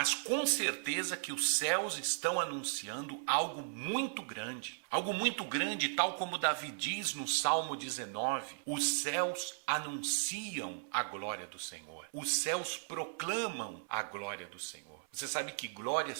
com certeza que os céus estão anunciando algo muito grande. Algo muito grande, tal como Davi diz no Salmo 19, os céus anunciam a glória do Senhor. Os céus proclamam a glória do Senhor. Você sabe que glória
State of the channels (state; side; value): silent; left; 53 dB below the other